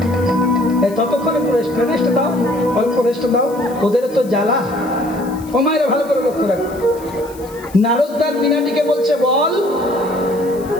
এই ততক্ষণ একটু রেস্ট দাও, অল্প রেস্ট দাও, ওদের তো জ্বালা। ও মায়েরা ভালো করে লক্ষ্য রাখো, নারদদার বীণাটিকে বলছে বল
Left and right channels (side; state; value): left; noise; hiss, 22 dB below the sound